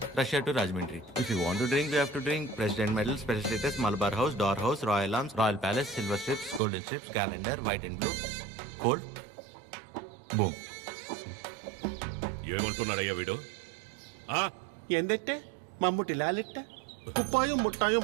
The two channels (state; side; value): drops out; left; at 6.6 s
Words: Russia to Rajahmundry. If you want to drink, you have to drink President Medal, Special Status, Malabar House, Door House, Royal Arms, Royal Palace, Silver Strips, Golden Strips, Calendar, White and Blue. Cold. Boom. ఏమంటున్నాడయ్యా వీడు? എന്തെറ്റെ മമ്മൂട്ടി ലാലിട്ട് കുപ്പായും മുട്ടായും